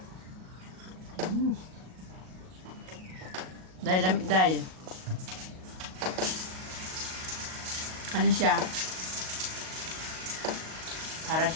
Dahil lamig dahil. Ano siya? Para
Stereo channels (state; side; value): late; left; 38 ms